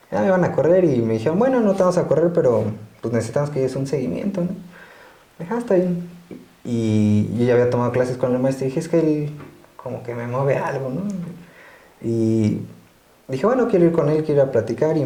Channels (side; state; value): both; identical; correlation 1.00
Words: Ya me iban a correr y me dijeron, bueno, no te vamos a correr, pero pues necesitamos que des un seguimiento, ¿no? Dije, está bien. Y yo ya había tomado clases con el maestro y dije, es que él como que me mueve algo, ¿no? Y dije, bueno, quiero ir con él, quiero ir a platicar, y